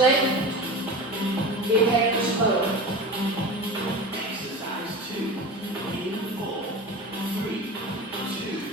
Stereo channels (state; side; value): normal; both; correlation 0.30